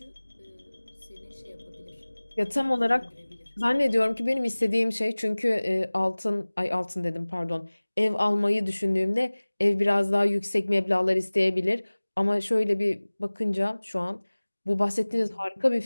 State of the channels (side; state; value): both; inverted; correlation -1.00